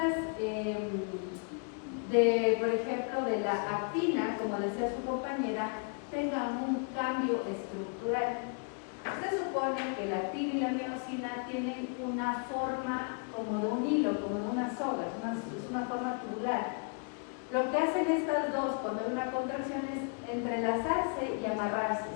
por ejemplo, de la actina, como decía su compañera, tengan un cambio estructural. Se supone que la actina y la miosina tienen una forma como de un hilo, como de una soga, es una forma tubular. Lo que hacen estas dos cuando hay una contracción es entrelazarse y amarrarse.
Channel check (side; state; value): right; quieter; 39.2 dB